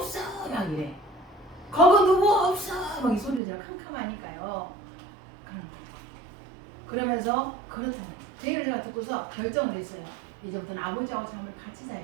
막 이래. 거기 누구 없어 막 이 소리를 제가 캄캄하니까요. 그러면서 그렇다는 제 얘기를 제가 듣고서 결정을 했어요. 이제부터는 아버지하고 잠을 같이 자야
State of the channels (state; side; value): drops out; left; at 3.4 s